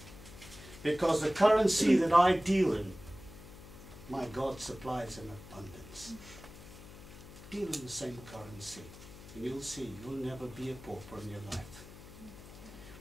Because the currency that I deal in, my God supplies in abundance. Deal in the same currency, and you'll see you'll never be a pauper in your life.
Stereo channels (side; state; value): left; noise; hum, 17 dB below the sound